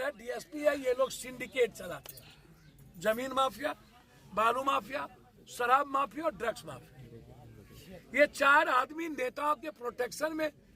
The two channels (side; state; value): both; identical; correlation 1.00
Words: है, डीएसपी है, ये लोग सिंडिकेट चलाते हैं। जमीन माफिया, बालू माफिया, शराब माफिया और ड्रग्स माफिया, ये 4 आदमी नेताओं के प्रोटेक्शन में।